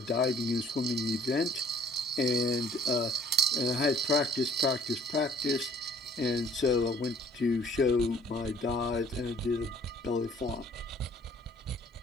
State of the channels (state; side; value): normal; both; correlation 0.57